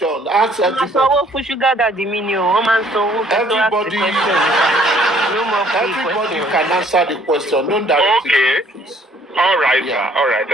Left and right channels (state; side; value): normal; both; correlation 0.60